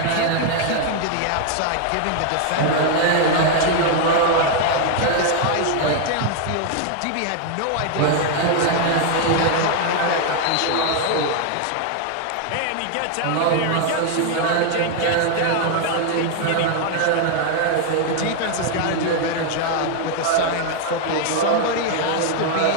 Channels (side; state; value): both; different; correlation 0.00